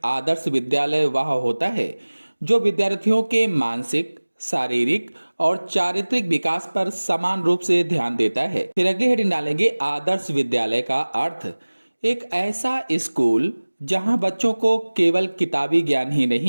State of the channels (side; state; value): both; inverted; correlation -1.00